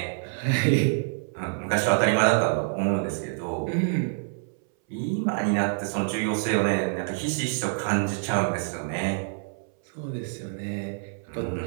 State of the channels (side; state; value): left; silent; 60 dB below the other